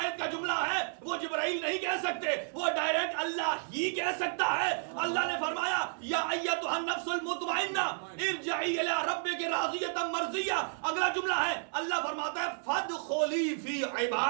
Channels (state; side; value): silent; left; 56 dB below the other